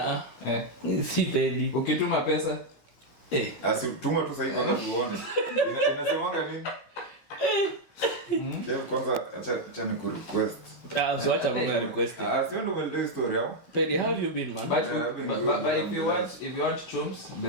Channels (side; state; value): right; late; 15 ms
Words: Si Peddie. Ukituma pesa Tuma tu sasa kwanza tuone. Inasemanga nini? Kev kwanza acha ni ku request. So acha mama request. Sio ndo well story hapo. Peddie, how have you been, man? But if you want chums,